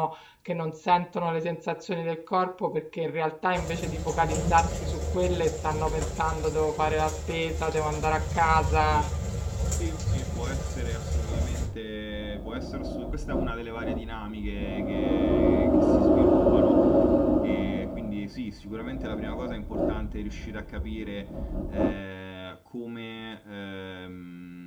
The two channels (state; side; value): identical; both; correlation 1.00